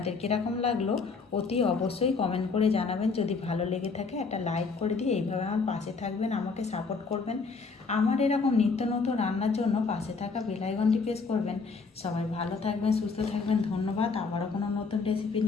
কীরকম লাগলো অতি অবশ্যই কমেন্ট করে জানাবেন। যদি ভালো লেগে থাকে একটা লাইক করে দিয়ে এইভাবে আমার পাশে থাকবেন, আমাকে সাপোর্ট করবেন। আমার এরকম নিত্য নতুন রান্নার জন্য পাশে থাকা বেল আইকনটি প্রেস করবেন। সবাই ভালো থাকবেন, সুস্থ থাকবেন, ধন্যবাদ। আবারও কোনো নতুন রেসিপি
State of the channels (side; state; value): right; quieter; 4.6 dB